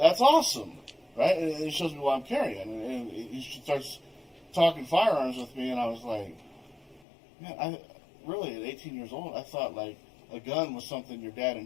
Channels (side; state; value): right; drops out; at 7.0 s